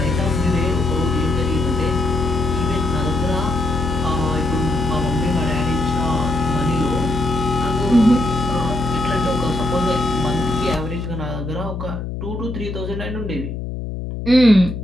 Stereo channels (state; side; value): noise; left; hum, 6 dB below the sound